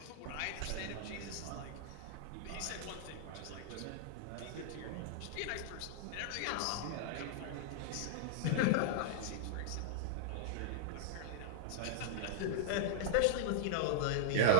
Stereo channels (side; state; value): both; different; correlation 0.00